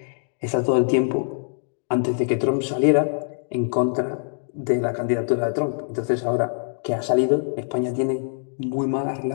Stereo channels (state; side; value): silent; right; digital silence